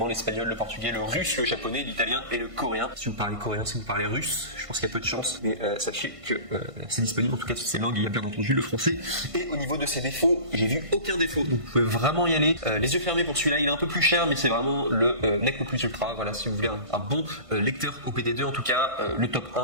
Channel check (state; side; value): late; left; 1.5 ms